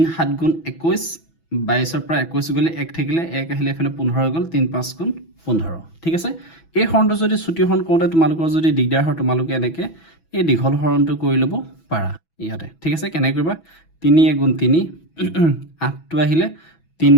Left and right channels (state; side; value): late; right; 6.1 ms